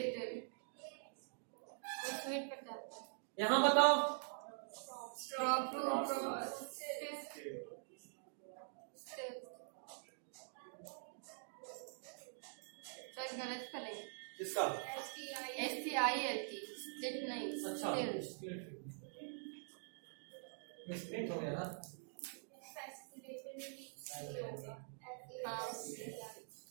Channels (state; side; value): silent; left; digital silence